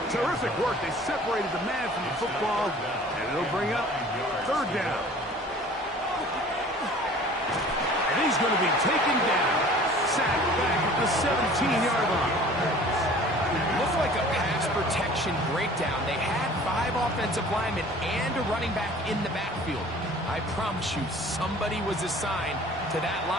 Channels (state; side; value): normal; both; correlation 0.47